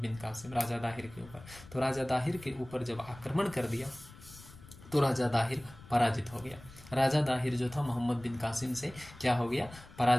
कासिम राजा दाहिर के ऊपर। तो राजा दाहिर के ऊपर जब आक्रमण कर दिया तो राजा दाहिर पराजित हो गया। राजा दाहिर जो था मोहम्मद बिन कासिम से क्या हो गया,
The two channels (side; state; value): left; noise; rumble, 19 dB below the sound